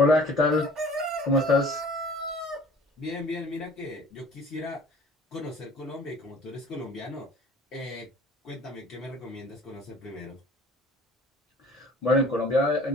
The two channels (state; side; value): normal; both; correlation 0.49